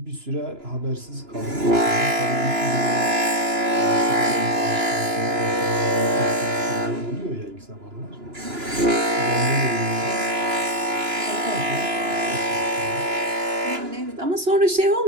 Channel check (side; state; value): left; late; 2.9 ms